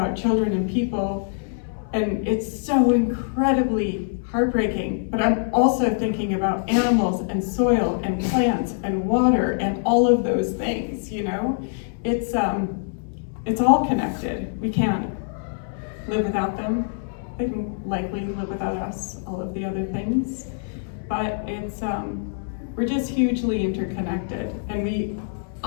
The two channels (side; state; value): right; silent; 62 dB below the other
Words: children and people, and it's so incredibly heartbreaking, but I'm also thinking about animals and soil and plants and water and all of those things, you know? It's all connected. We can't live without them. They can likely live without us, all of the other things. But we're just hugely interconnected. And